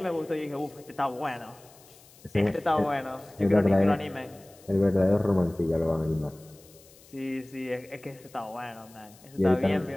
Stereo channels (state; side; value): noise; left; hiss, 25 dB below the sound